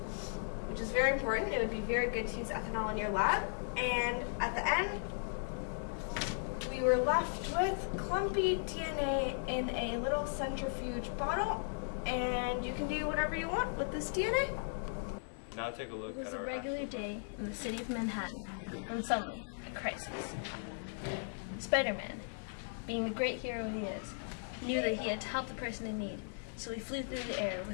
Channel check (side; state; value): right; silent; digital silence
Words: which is very important. It would be very good to use ethanol in your lab. And at the end, we were left with clumpy DNA in a little centrifuge bottle, and you can do whatever you want with this DNA. Now take a look It was at a our regular day in the city of Manhattan when suddenly a crisis. Spider-Man, being the great hero he is, knew that he had to help the person in need, so he flew through the air